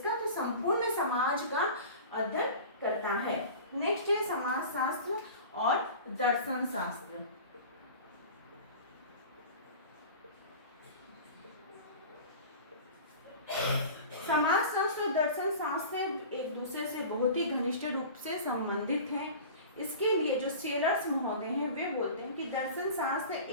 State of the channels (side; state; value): both; inverted; correlation -0.37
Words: तो संपूर्ण समाज का अध्ययन करता है। नेक्स्ट है समाजशास्त्र और दर्शन शास्त्र। समाजशास्त्र और दर्शन शास्त्र एक दूसरे से बहुत ही घनिष्ठ रूप से संबंधित हैं। इसके लिए जो सेलर्स महोदय हैं वे बोलते हैं कि दर्शन शास्त्र